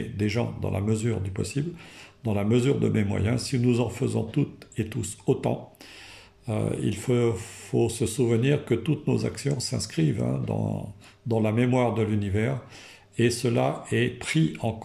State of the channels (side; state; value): both; identical; correlation 1.00